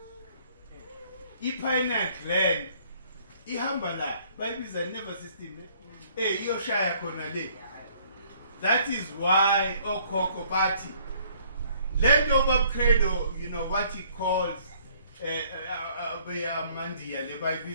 I-pineal gland ihamba la bayibiza nervous system iyoshaya khona le. That is why okhokho bathi land over credo, you know what he calls mandiya le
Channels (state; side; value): inverted; both; correlation -0.61